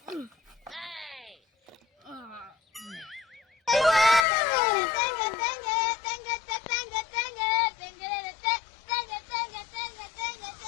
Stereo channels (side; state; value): right; drops out; at 4.2 s